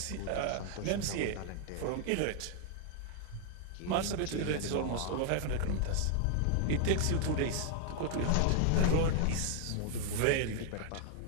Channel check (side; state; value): both; different; correlation 0.00